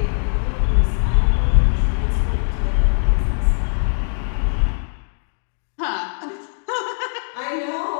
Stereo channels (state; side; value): silent; right; digital silence